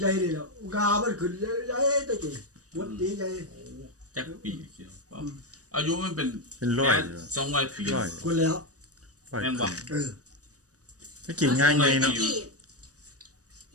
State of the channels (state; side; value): late; left; 0.66 ms